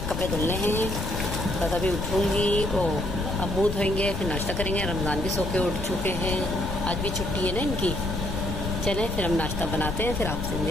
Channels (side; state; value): left; noise; rumble, 4 dB below the sound